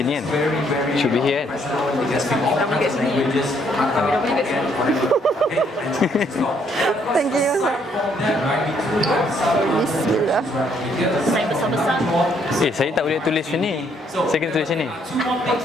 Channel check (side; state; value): both; normal; correlation 0.69